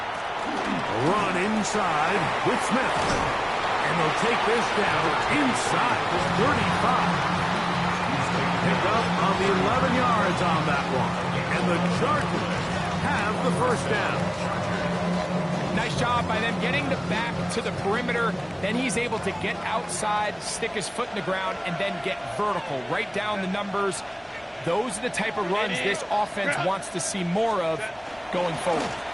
Run inside with Smith. And they'll take this down inside the 35. Pick up on the 11 yards on that one. And the Chargers have the first down. Nice job by them getting the back to the perimeter. Then he's able to get outside, stick his foot in the ground, and then get vertical. Right down the numbers. Those are the type of runs this offense wants to see more of going forward.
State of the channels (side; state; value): both; identical; correlation 1.00